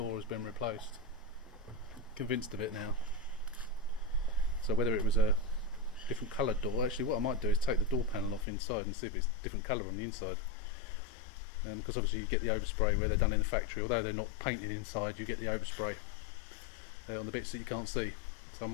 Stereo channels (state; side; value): drops out; right; at 8.5 s